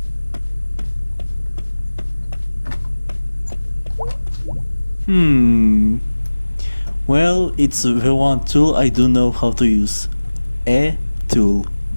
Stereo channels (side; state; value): both; inverted; correlation -1.00